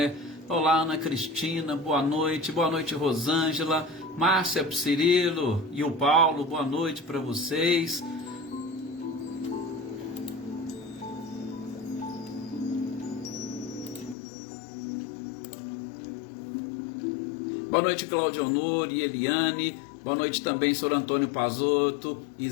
Olá, Ana Cristina, boa noite. Boa noite, Rosângela, Márcia, Cirilo e o Paulo, boa noite para vocês. Boa noite, Cláudio Honor e Eliane. Boa noite também, Sr. Antônio Pazotto,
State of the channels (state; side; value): drops out; right; at 14.2 s